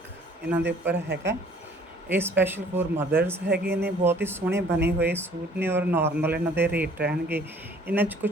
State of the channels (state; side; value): normal; both; correlation 0.56